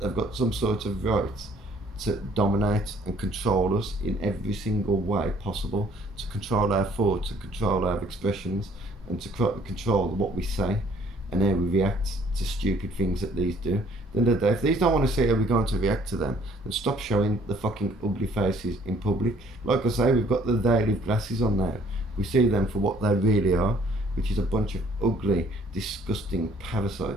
got some sort of right to dominate and control us in every single way possible, to control our thoughts, to control our expressions, and to control what we say and how we react to stupid things that these do. Then the day, if these don't want to see how we're going to react to them, then stop showing the fucking ugly faces in public. Like I say, we've got the daily glasses on now. We see them for what they really are, which is a bunch of ugly, disgusting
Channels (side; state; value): both; normal; correlation 0.59